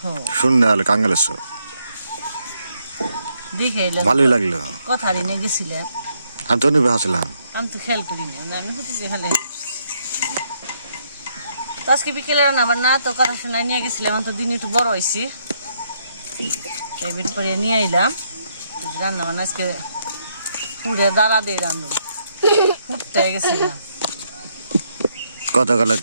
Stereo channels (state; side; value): inverted; both; correlation -0.74